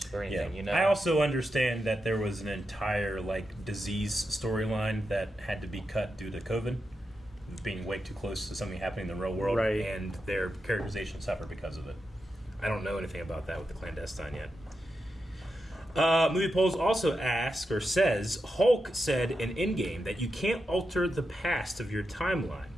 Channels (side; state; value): both; normal; correlation 0.88